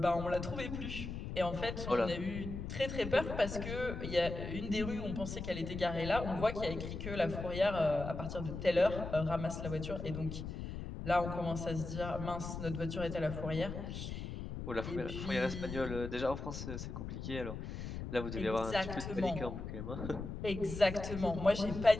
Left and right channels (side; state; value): left; noise; rumble, 6 dB below the sound